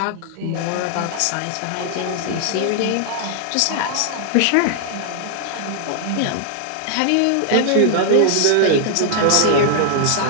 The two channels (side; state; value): both; different; correlation 0.00